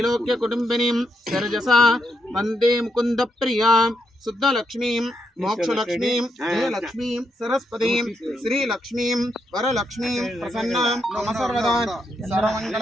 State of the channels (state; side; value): normal; both; correlation 0.81